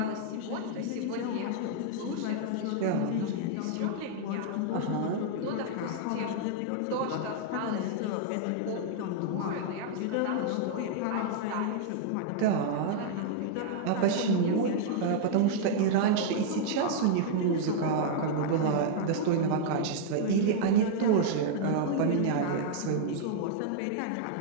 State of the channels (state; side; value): different; both; correlation -0.01